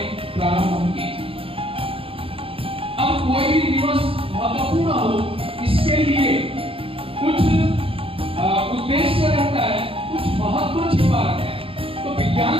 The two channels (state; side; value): late; left; 0.27 ms